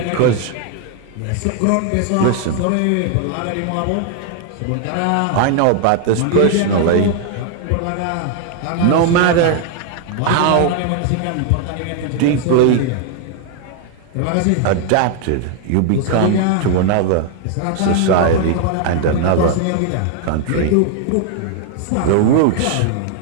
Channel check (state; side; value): different; both; correlation 0.00